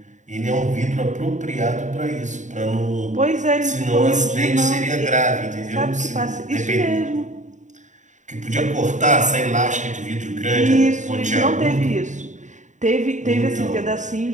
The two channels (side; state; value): left; late; 0.35 ms